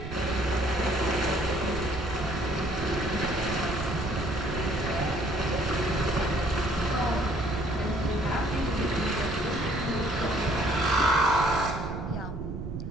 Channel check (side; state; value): right; noise; rumble, 7 dB below the sound